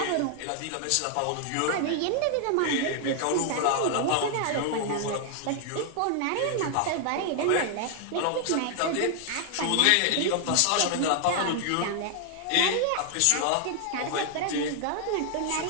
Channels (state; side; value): different; both; correlation 0.00